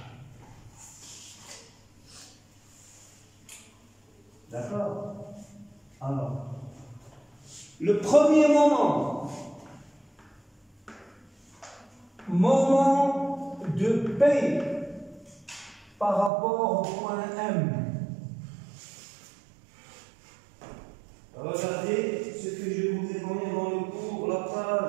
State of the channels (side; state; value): left; drops out; at 16.3 s